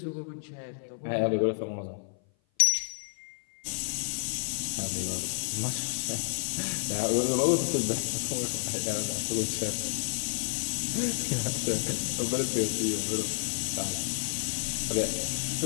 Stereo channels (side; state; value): right; silent; 55 dB below the other